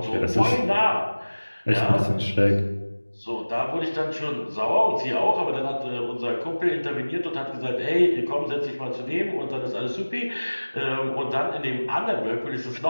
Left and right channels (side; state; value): both; inverted; correlation -1.00